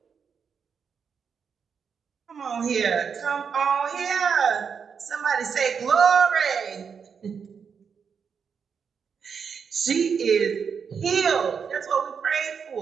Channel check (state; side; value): quieter; left; 6.4 dB